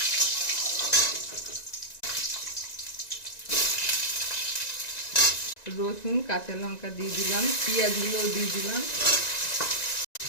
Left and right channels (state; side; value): late; right; 1.9 ms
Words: রসুন কাঁচা লঙ্কা দিয়ে দিলাম, পেঁয়াজগুলো দিয়ে দিলাম,